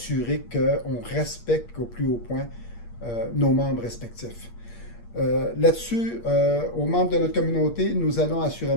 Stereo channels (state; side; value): late; right; 8.5 ms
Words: qu'on respecte au plus haut point nos membres respectifs. Là-dessus, aux membres de notre communauté, nous allons